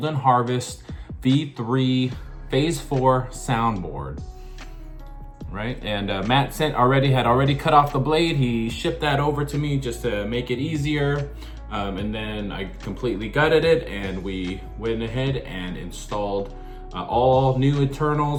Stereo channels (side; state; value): both; identical; correlation 1.00